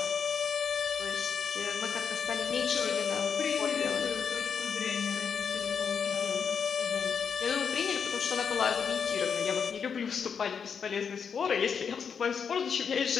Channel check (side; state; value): right; quieter; 6.6 dB